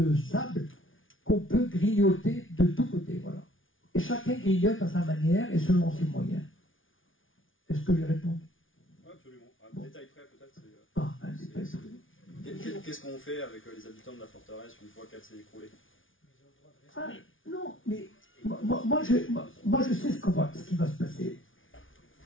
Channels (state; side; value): late; right; 0.57 ms